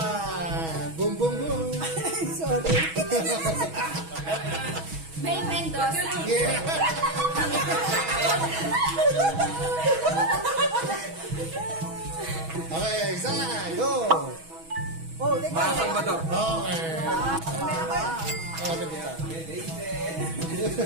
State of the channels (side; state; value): left; late; 6.2 ms